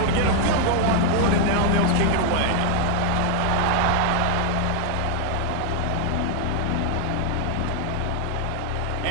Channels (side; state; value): both; different; correlation 0.00